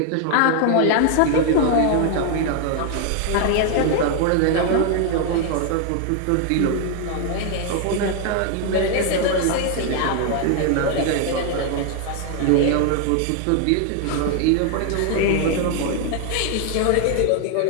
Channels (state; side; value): different; both; correlation 0.00